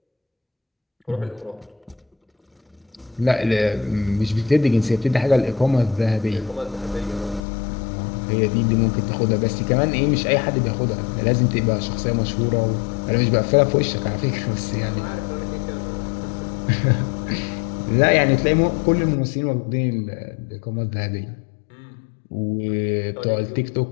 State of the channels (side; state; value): right; drops out; at 7.4 s